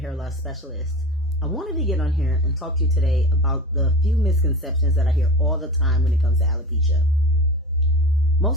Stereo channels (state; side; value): normal; both; correlation 0.32